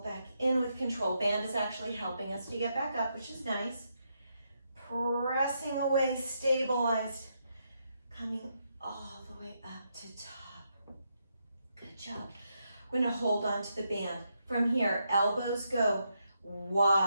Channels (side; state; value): both; inverted; correlation -0.80